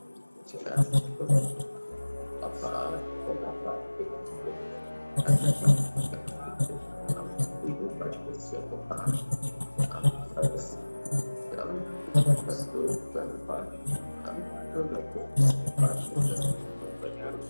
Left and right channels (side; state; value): both; inverted; correlation -1.00